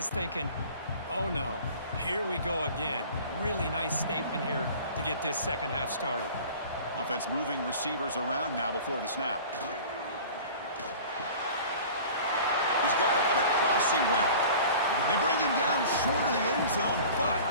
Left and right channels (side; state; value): both; inverted; correlation -0.42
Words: thinking, oh no, here we go again. Really nice statement here to get this second half started. Offense moving receivers around now before the snap. He's got it on a crossing route. They bring him down short of the end zone,